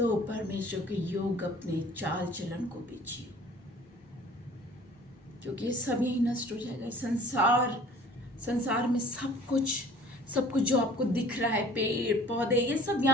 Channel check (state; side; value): normal; both; correlation 0.50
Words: परमेश्वर के योग अपने चाल चलन को भी जियो, क्योंकि ये सब यही नष्ट हो जाएगा। संसार में सब कुछ सब कुछ जो आपको दिख रहा है, पेड़ पौधे, ये सब